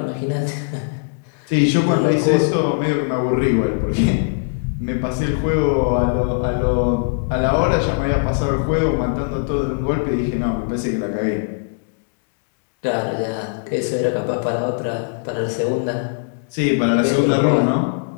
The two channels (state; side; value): silent; right; digital silence